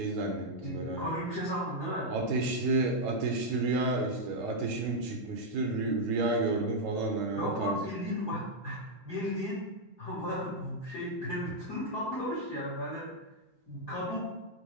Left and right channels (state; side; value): normal; both; correlation -0.03